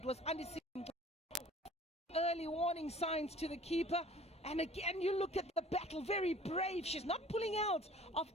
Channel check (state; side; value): normal; both; correlation 0.49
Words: was early warning signs to the keeper. And again, you look at the battle, very brave. She's not pulling out of